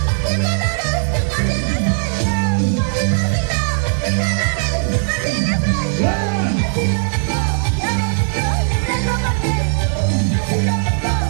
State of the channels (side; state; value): left; silent; digital silence